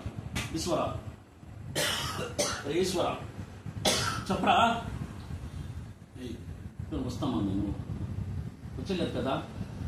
ఈశ్వర ఈశ్వర చెప్పరా ఇప్పుడు వస్తామా నేను వచ్చలేదు కదా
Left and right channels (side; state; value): both; identical; correlation 1.00